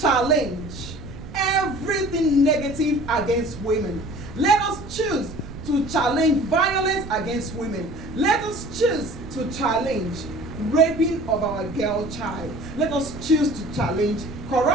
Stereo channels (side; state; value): right; noise; rumble, 13 dB below the sound